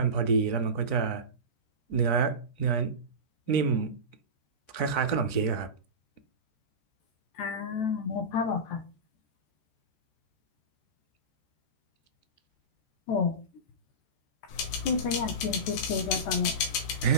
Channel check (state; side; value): late; right; 14 ms